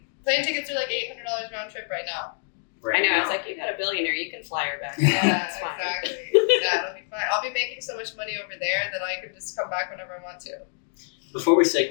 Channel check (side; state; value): right; silent; digital silence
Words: Plane tickets are like $800 round trip right now. Right I know, now. I was like, you got a billionaire, you can fly her back. Yeah, It's fine. exactly. Yeah, it'll be fine. I'll be making so much money over there that I can just come back whenever I want to. Before we